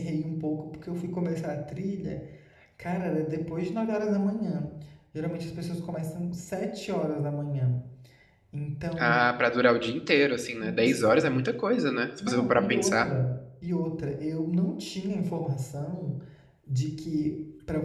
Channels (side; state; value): both; identical; correlation 1.00